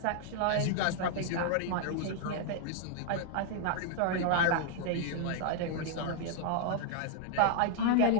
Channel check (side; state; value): both; different; correlation 0.00